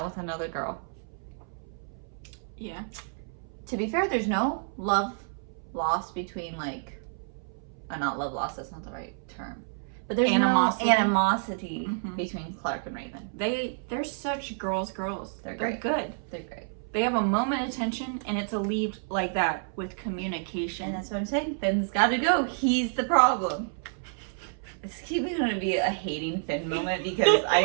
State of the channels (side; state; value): left; silent; 58 dB below the other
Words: with another girl. Yeah. To be fair, there's no love lost between not love lost. That's not the right term. But there's Animosity. no animosity Mhm. between Clark and Raven. They're such girls. They're They're great. good. They're great. They have a moment of tension, and it's alleviated like that with communication. And that's what I'm saying. Finn's got to go. He's the problem. It's keeping going to be a hating Finn moment because I